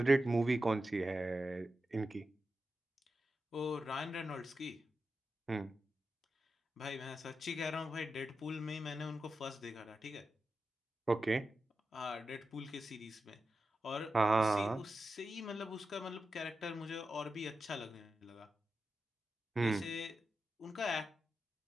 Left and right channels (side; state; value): both; normal; correlation 0.90